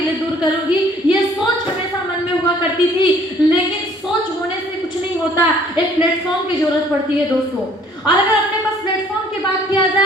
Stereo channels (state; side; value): normal; both; correlation 0.58